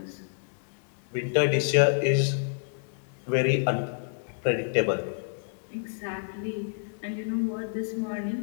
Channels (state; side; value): silent; right; digital silence